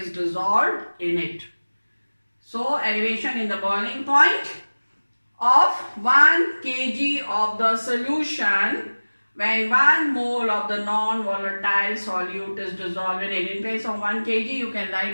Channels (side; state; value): both; inverted; correlation -1.00